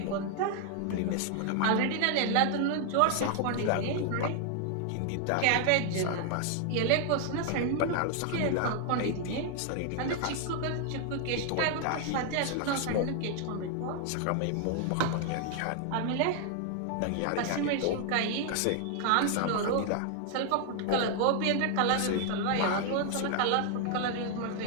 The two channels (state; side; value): different; both; correlation 0.00